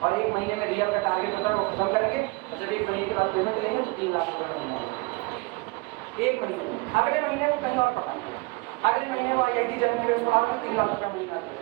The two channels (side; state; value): left; quieter; 26.3 dB